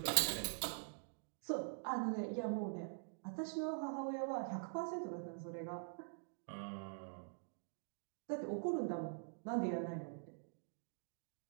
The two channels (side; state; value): left; silent; digital silence